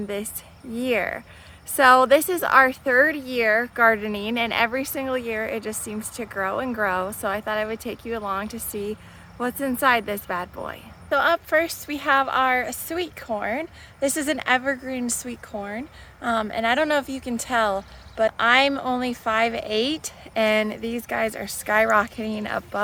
this year. So this is our third year gardening, and every single year it just seems to grow and grow. So I thought I would take you along to see what's inside this bad boy. So up first we have our sweet corn. This is an evergreen sweet corn, and I don't know if you can tell, but I'm only 5'8", and these guys are skyrocketing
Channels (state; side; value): identical; both; correlation 1.00